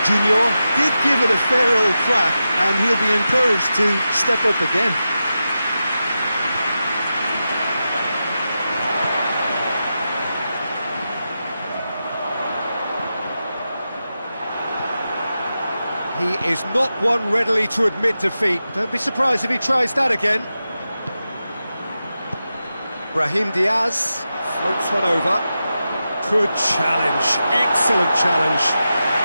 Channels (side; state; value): both; inverted; correlation -0.91